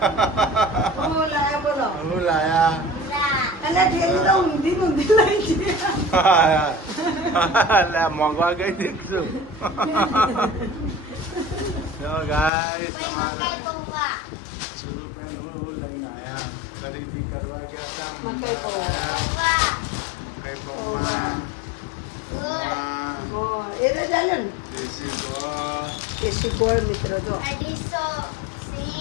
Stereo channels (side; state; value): right; drops out; at 12.5 s